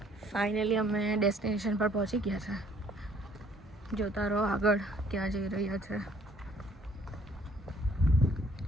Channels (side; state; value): both; normal; correlation 0.60